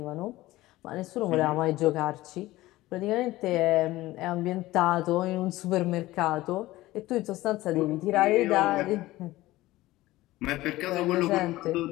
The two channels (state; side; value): quieter; right; 17.5 dB